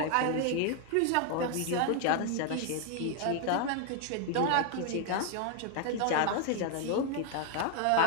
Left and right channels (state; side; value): different; both; correlation 0.01